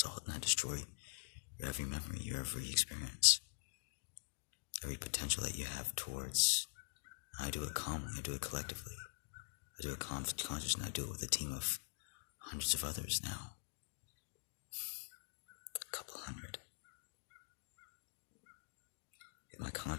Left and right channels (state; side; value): silent; right; digital silence